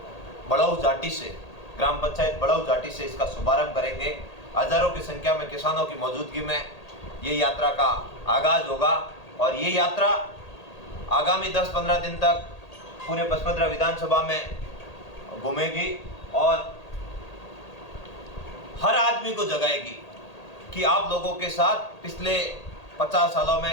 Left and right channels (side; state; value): right; late; 1.8 ms